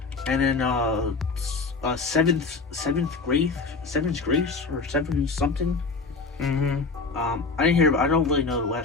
And then Seventh Grace or Seven something. Mm-hmm. I didn't hear. I don't really know the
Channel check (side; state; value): right; quieter; 4.2 dB